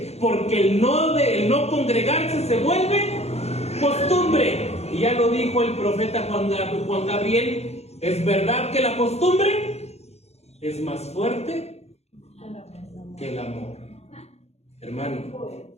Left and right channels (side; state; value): right; late; 0.31 ms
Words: porque el no congregarse se vuelve costumbre. Y ya lo dijo el profeta Juan Gabriel: es verdad que la costumbre es más fuerte que el amor. Hermano,